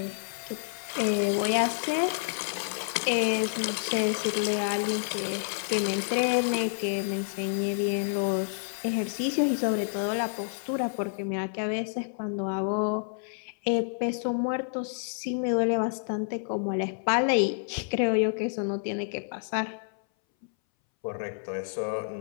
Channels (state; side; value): silent; right; 59 dB below the other